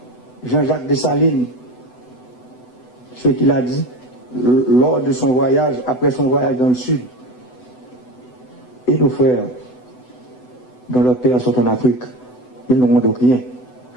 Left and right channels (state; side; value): late; right; 8.0 ms